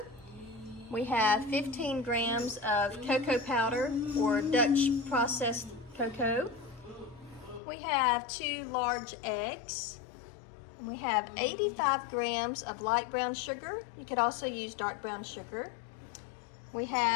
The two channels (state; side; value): drops out; right; at 7.6 s